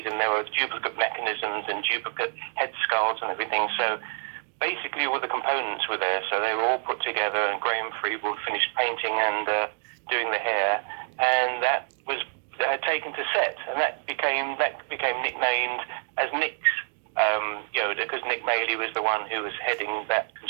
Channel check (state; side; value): silent; left; digital silence